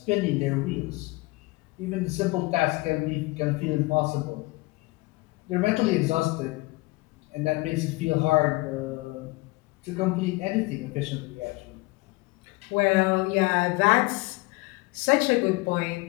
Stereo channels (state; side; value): quieter; right; 23.0 dB